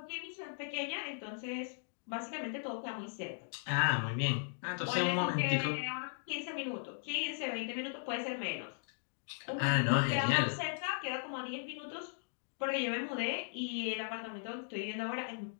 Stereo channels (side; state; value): right; silent; digital silence